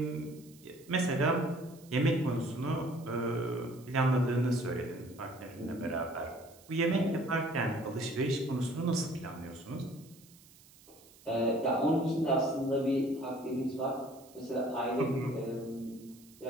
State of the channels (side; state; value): right; noise; hiss, 24 dB below the sound